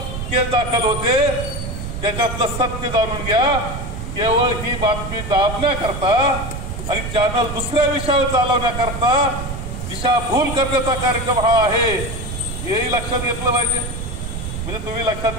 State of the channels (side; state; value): right; noise; rumble, 6 dB below the sound